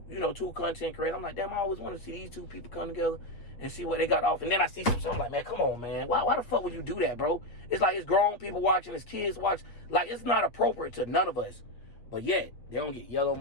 content creators. I'm like, damn, I always want to see these two people come together and see what they got off. And then I see something like, man, come on, man. Why the fuck would you do that, bro? It's like it's grown people watching, it's kids watch. Like, it's not appropriate to none of us. But yet, they don't get yellow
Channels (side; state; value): right; late; 8.1 ms